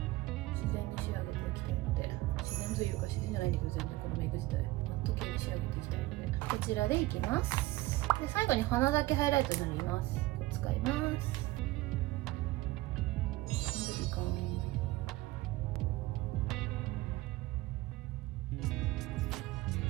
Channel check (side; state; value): left; quieter; 18.7 dB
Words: 自然に仕上げていきたいので、自然というか自然じゃないんだけど、全然このメイク自体マット系に仕上げていきたいので、こちらでいきます。で最後に鼻だけハイライトになります。使います。いいか